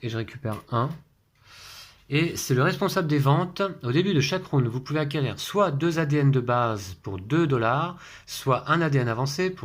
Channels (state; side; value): identical; both; correlation 1.00